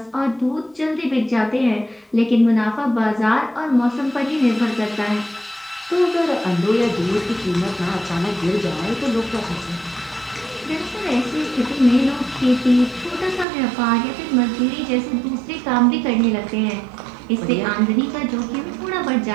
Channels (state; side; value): drops out; left; at 13.5 s